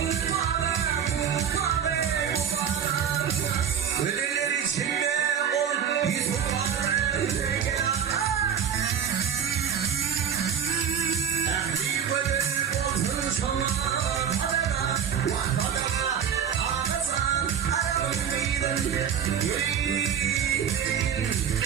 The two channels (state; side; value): quieter; left; 8.2 dB